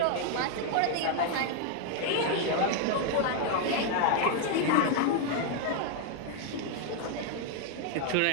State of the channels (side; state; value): both; different; correlation 0.00